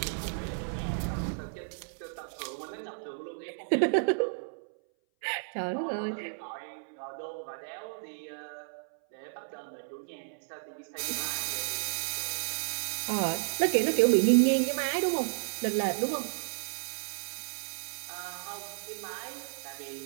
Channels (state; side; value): silent; left; 56 dB below the other